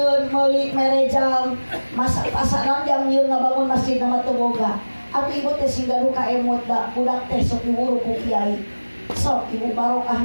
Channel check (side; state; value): both; inverted; correlation -1.00